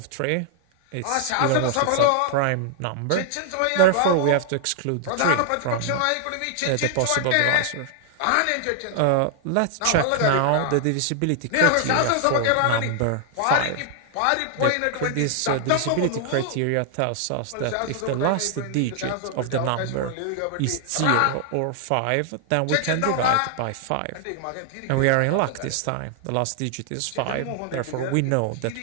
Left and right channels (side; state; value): both; different; correlation 0.00